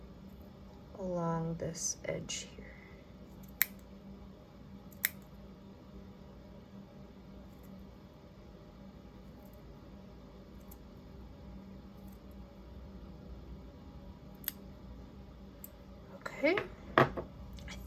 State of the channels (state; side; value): identical; both; correlation 1.00